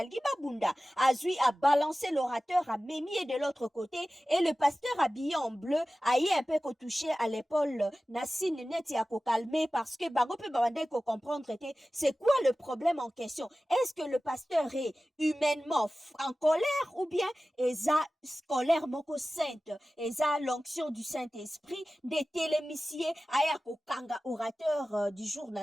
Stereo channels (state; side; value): normal; both; correlation 0.96